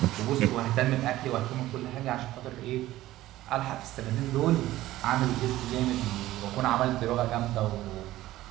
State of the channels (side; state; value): left; quieter; 15.6 dB